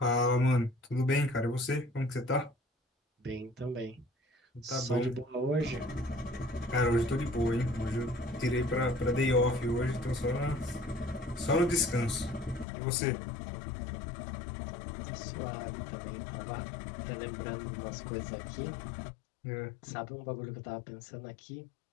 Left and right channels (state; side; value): drops out; right; at 12.7 s